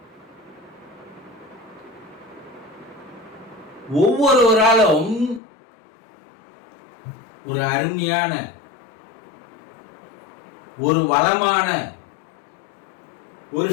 ஒவ்வொருவராலும் ஒரு அருமையான, ஒரு வளமான, ஒரு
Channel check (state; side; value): drops out; right; at 5.4 s